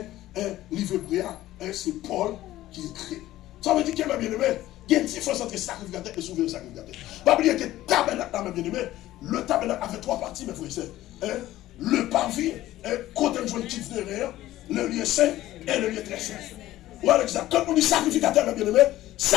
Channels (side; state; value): right; quieter; 15.1 dB